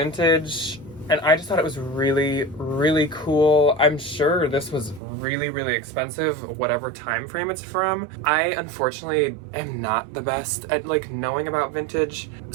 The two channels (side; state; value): left; drops out; at 5.0 s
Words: and I just thought it was really, really cool. I'm sure this was really, really expensive, whatever time frame it's from. I unfortunately am not the best at like knowing about vintage,